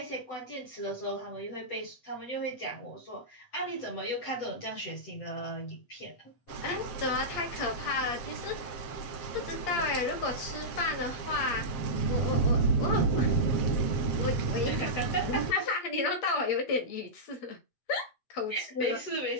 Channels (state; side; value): late; right; 7.6 ms